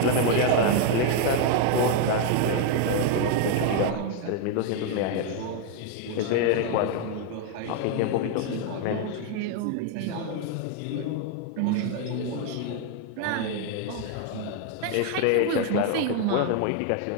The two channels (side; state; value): both; different; correlation 0.01